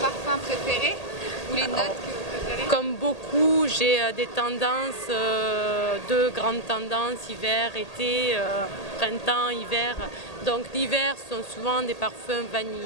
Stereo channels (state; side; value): late; right; 1.8 ms